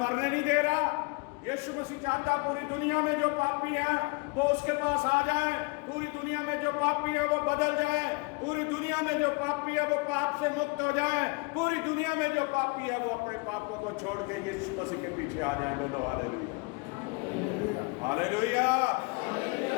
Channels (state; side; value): quieter; right; 28.9 dB